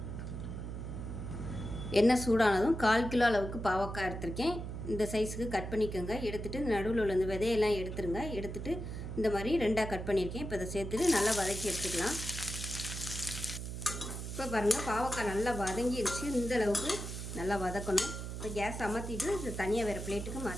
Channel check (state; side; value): noise; right; hum, 6 dB below the sound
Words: எண்ணெய் சூடானதும் 1/4 கிலோ அளவுக்கு பாவக்காய் எடுத்திருக்கேன். இந்த சைஸுக்கு கட் பண்ணிக்கோங்க. எடுத்துகிட்டு நடுவில் உள்ள இந்த விதையெல்லாம் எடுத்துருங்க. எடுத்துகிட்டு இந்த மாதிரி 2ஆக கட் பண்ணியிருக்கேன். இப்போ இதை சேர்த்துட்டு நல்லா வதக்கி எடுத்துக்கலாம். இப்போ பாருங்கள், பாவக்காய் நல்லா வதங்கிடுச்சு. இந்த அளவுக்கு நல்லா வதக்கணும். இப்போ கேஸ் அமர்த்திட்டு இதை தனியாக வேறு பிளேட்டுக்கு